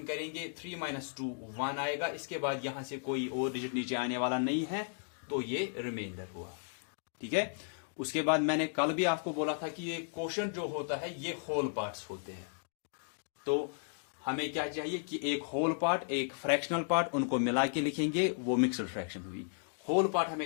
करेंगे, 3 - 2 1 आएगा। इसके बाद यहां से कोई और डिजिट नीचे आने वाला नहीं है, तो ये रिमाइंडर हुआ, ठीक है। उसके बाद मैंने कल भी आपको बोला था कि ये क्वोशंट जो होता है ये होल पार्ट्स होते हैं। तो हमें क्या चाहिए कि एक होल पार्ट, एक फ्रैक्शनल पार्ट, उनको मिला के लिखेंगे, वो मिक्सड फ्रैक्शन हुई। होल पार्ट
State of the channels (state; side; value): silent; right; digital silence